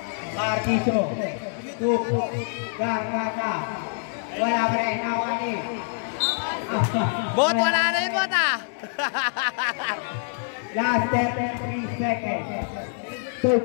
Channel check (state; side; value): silent; right; digital silence